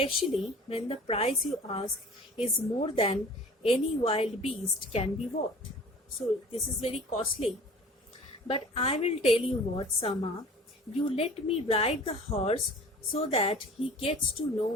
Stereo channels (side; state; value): both; normal; correlation 0.44